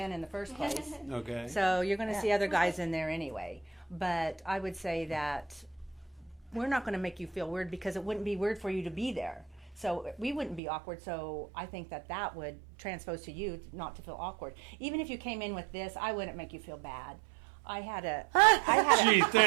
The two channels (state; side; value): drops out; left; at 10.6 s